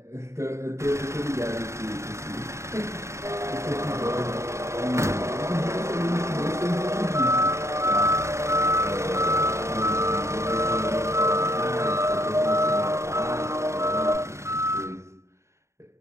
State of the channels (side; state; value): left; late; 0.14 ms